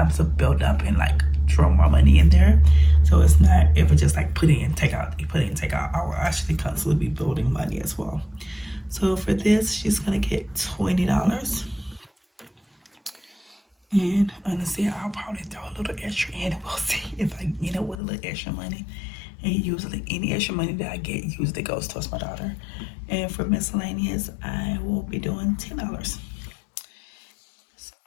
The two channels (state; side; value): drops out; right; at 17.9 s